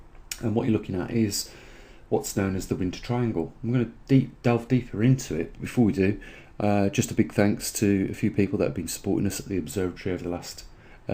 And what you're looking at is what's known as the Winter Triangle. I'm going to delve deeper into it. Before we do, just a big thanks to a few people that have been supporting us at the observatory over the last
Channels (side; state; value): both; identical; correlation 1.00